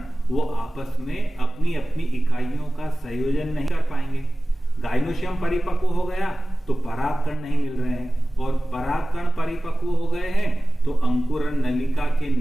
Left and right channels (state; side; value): normal; both; correlation 0.97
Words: वो आपस में अपनी अपनी इकाइयों का संयोजन नहीं कर पाएंगे। गाइनोशियम परिपक्व हो गया तो परागकण नहीं मिल रहे हैं, और परागकण परिपक्व हो गए हैं तो अंकुरन नलिका के